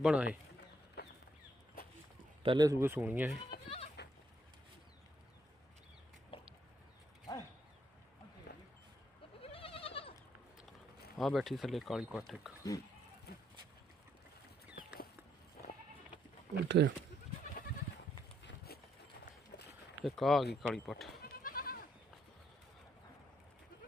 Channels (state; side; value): normal; both; correlation 0.73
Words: ਆ। ਇਹ ਪਹਿਲੇ ਸੂਏ ਸੂਣੀ ਆ। ਇਹ ਆ ਬੈਠੀ ਥੱਲੇ ਕਾਲੀ ਪੱਠ ਇੱਕ। ਉੱਥੇ ਇੱਕ ਆ ਗਈ ਕਾਲੀ ਪੱਠ।